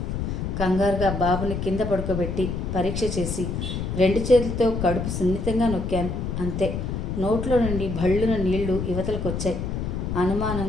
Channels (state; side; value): noise; left; rumble, 3 dB below the sound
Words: కంగారుగా బాబుని కింద పడుకోబెట్టి పరీక్ష చేసి 2 చేతులతో కడుపు సున్నితంగా నొక్కాను. అంతే, నోట్లో నుండి భళ్ళున నీళ్లు యువతలకొచ్చాయి.